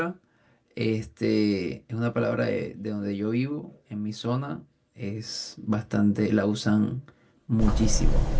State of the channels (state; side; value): identical; both; correlation 1.00